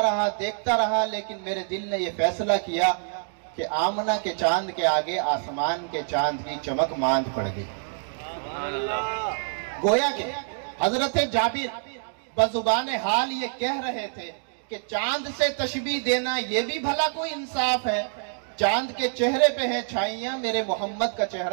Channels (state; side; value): silent; left; digital silence